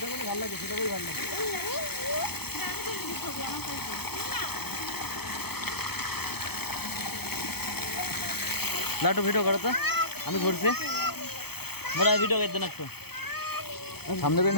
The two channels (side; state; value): right; late; 0.97 ms